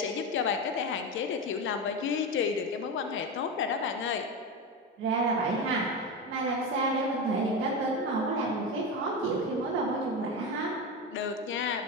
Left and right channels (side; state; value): both; normal; correlation 0.18